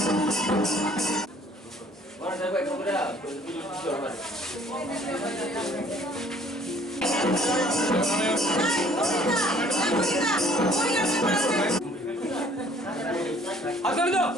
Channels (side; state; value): both; normal; correlation 0.57